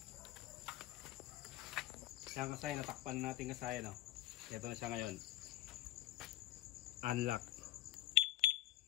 Kaya kasayan natakpan natin kasayan no. Ito na siya ngayon. Unlock.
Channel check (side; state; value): right; quieter; 13.8 dB